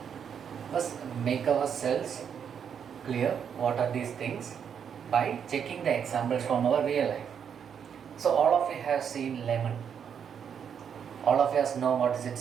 first make ourselves clear what are these things by checking the examples from our real life. So all of you have seen lemon. All of us know what is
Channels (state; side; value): quieter; left; 7.7 dB